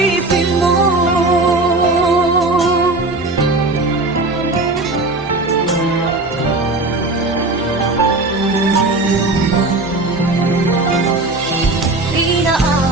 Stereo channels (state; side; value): quieter; left; 3.0 dB